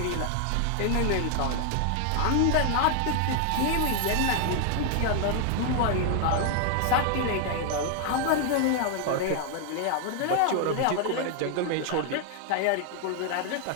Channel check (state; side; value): different; both; correlation 0.00